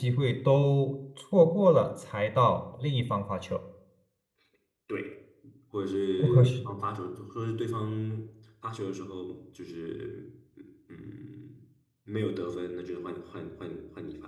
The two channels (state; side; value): identical; both; correlation 1.00